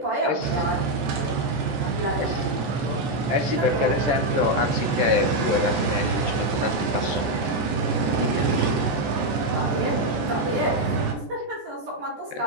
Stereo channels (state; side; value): late; left; 15 ms